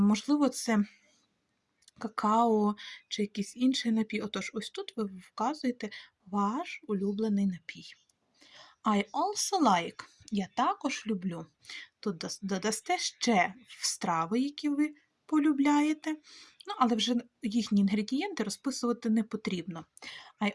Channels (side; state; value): both; identical; correlation 1.00